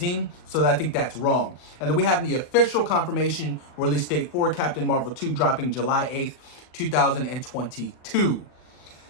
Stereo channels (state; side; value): late; right; 40 ms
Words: So I think that's wrong. And then we have the official confirmation release date for Captain Marvel 2 dropping July 8th, 2022.